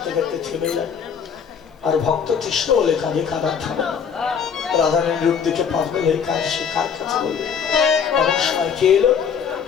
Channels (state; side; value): quieter; right; 7.0 dB